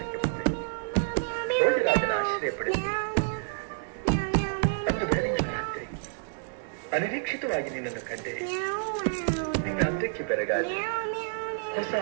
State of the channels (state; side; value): silent; left; digital silence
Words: ಬಂದೆ. ಭೋಜರಾಜನ ಆಶ್ರಯ ಪಡೆದು ಅಂದು ಬೆಳಗಿನ ರಾತ್ರಿ ಅನಿರೀಕ್ಷಿತವಾಗಿ ನಿನ್ನನ್ನು ಕಂಡೆ. ನಿನ್ನ ಅಂದಕ್ಕೆ ಬೆರಗಾಗಿ ಹೊಸ